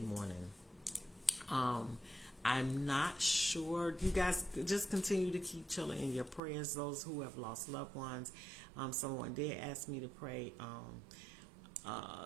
I'm not sure. You guys just continue to keep chilling in your prayers. Those who have lost loved ones. Someone did ask me to pray.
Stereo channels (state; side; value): drops out; left; at 6.4 s